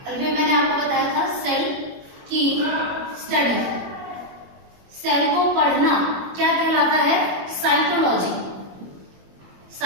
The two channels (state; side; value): late; left; 21 ms